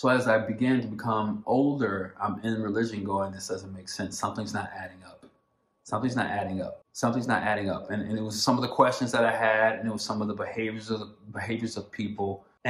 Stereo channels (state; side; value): identical; both; correlation 1.00